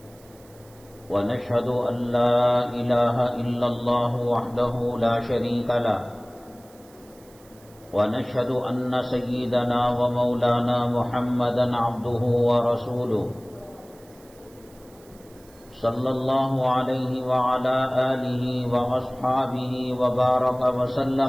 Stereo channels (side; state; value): right; noise; hiss, 27 dB below the sound